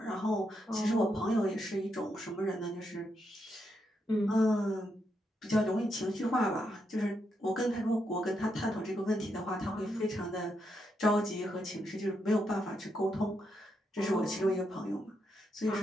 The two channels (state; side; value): normal; both; correlation 0.81